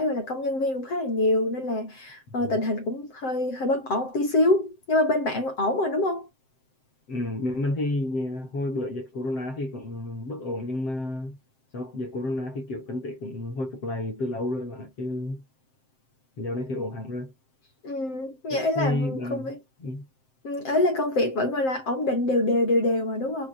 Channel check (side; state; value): right; late; 7.7 ms